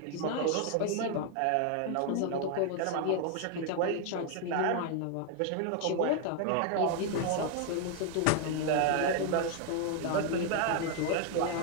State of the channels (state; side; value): different; both; correlation 0.00